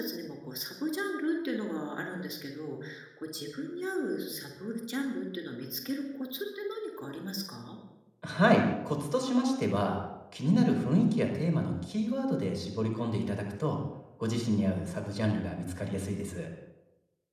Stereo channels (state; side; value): identical; both; correlation 1.00